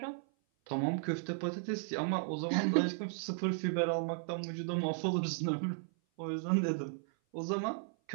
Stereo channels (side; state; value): left; silent; 54 dB below the other